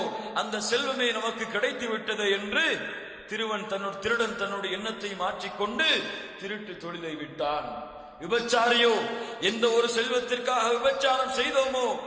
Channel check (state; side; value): identical; both; correlation 1.00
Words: அந்த செல்வமே நமக்கு கிடைத்து விட்டது என்று திருடன் தன்னுடைய எண்ணத்தை மாற்றிக்கொண்டு திருட்டு தொழிலை விட்டான். விபச்சாரியோ, எந்த ஒரு செல்வத்திற்காக விபச்சாரம் செய்தோமோ